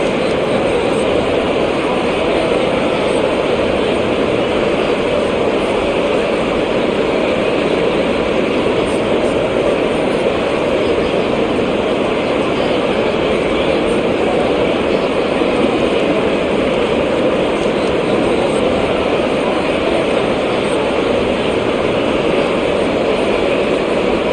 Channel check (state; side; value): identical; both; correlation 1.00